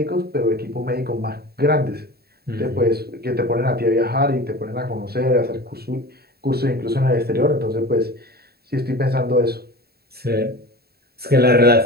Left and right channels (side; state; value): left; late; 0.46 ms